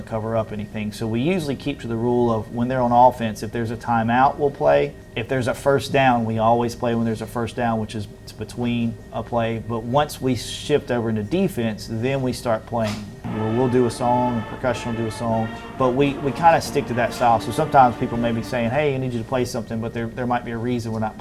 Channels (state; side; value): identical; both; correlation 1.00